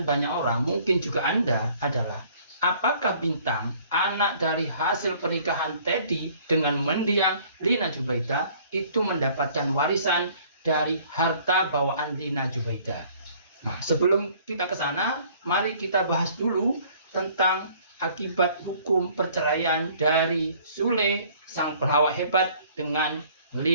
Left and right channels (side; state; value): both; inverted; correlation -0.56